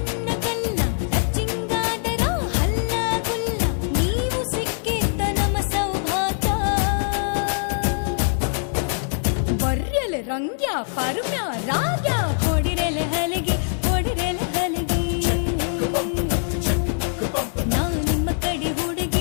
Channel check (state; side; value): silent; right; digital silence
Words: ರಂಗ್ಯ ಪರ್ಮ್ಯ ರಾಗ್ಯ ಹೊಡಿರೆಲೆ ಹಲಿಗೆ ಹೊಡಿರೆಲೆ ಹಲಿಗೆ ನಾ ನಿಮ್ಮ ಕಡೆ